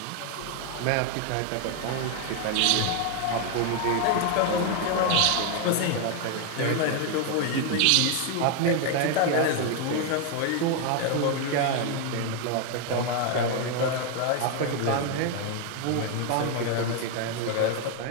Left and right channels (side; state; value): both; different; correlation 0.01